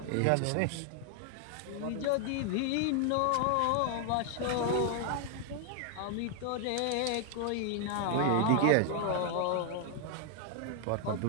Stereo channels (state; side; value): different; both; correlation 0.00